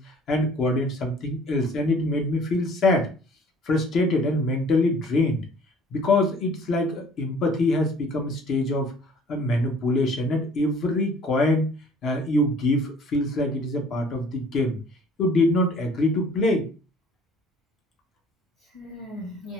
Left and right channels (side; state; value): both; normal; correlation 0.53